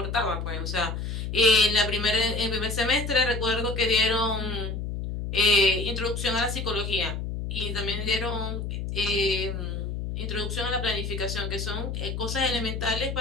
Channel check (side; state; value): left; noise; hum, 4 dB below the sound